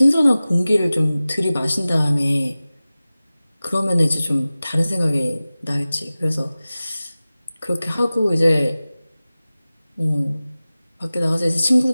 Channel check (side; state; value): both; inverted; correlation -0.97